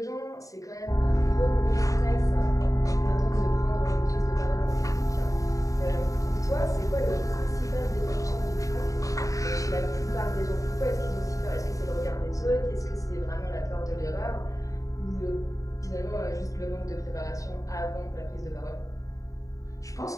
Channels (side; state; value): right; late; 0.16 ms